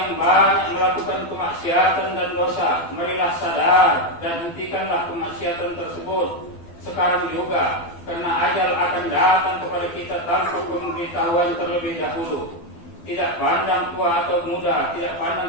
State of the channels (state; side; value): late; right; 12 ms